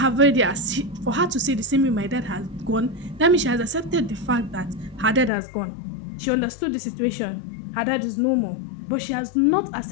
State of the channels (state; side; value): drops out; right; at 5.3 s